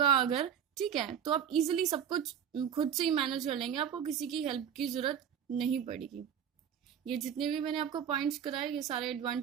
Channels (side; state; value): left; quieter; 8.5 dB